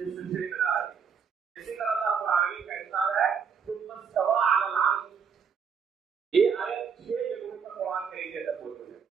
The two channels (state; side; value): quieter; left; 6.4 dB